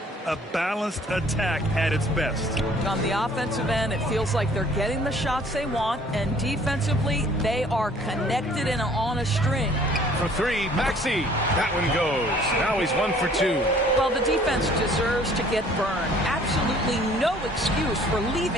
A balanced attack at its best. On the offensive end, it feels like they're getting the shots they want, and defensively, they are connected and on a string. For 3, Maxey. That one goes. Now he's 1 for 2. Well, the defense deserves to get burned. Absolutely no excuse for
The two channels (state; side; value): normal; both; correlation 0.55